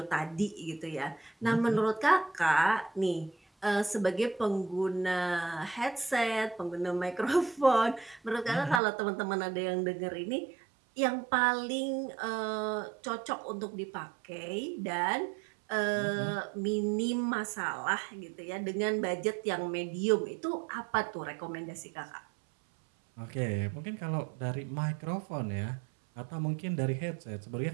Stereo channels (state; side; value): drops out; left; at 8.8 s